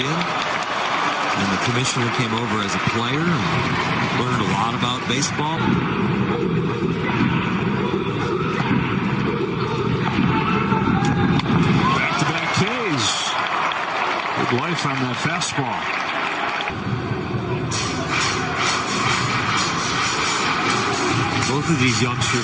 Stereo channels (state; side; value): identical; both; correlation 1.00